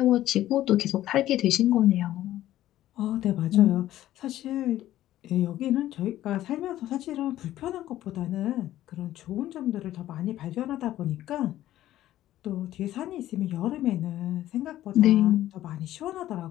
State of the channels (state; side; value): quieter; right; 13.7 dB